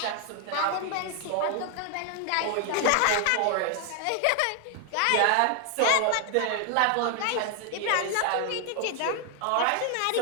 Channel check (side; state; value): both; different; correlation 0.00